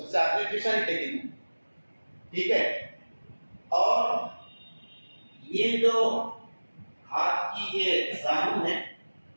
سے آخری پیشانی ٹیکیں گے, ٹھیک ہے. اور یہ جو ہاتھ کی یہ زانو ہے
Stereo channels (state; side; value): inverted; both; correlation -1.00